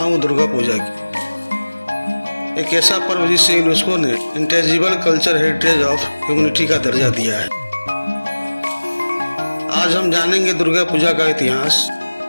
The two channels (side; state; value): both; inverted; correlation -1.00